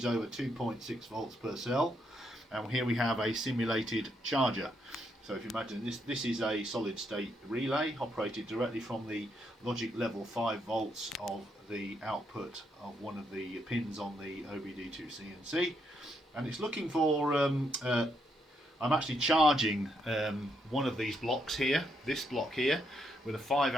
over 2.6 volts per cell. And here we have a simulated charger. So if you imagine this is a solid state relay operated directly from the logic level 5 volts of the output of one of the pins on the OBD2C&C, and it's looking for I'm actually charging one of these blocks here, this block here, with a 5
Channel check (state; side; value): normal; both; correlation 0.77